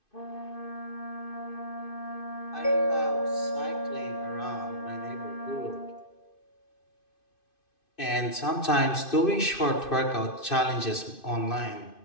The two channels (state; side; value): late; right; 2.5 ms